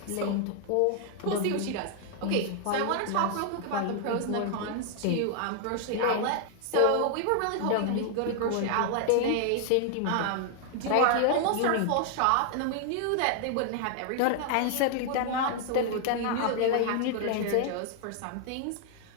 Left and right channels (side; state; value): both; different; correlation 0.00